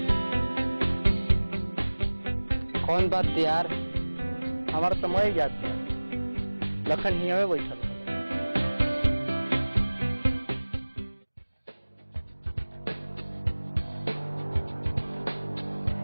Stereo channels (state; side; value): inverted; both; correlation -1.00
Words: कौन बात यार, हमारा समय याद था, लखन ही हमें बैठल।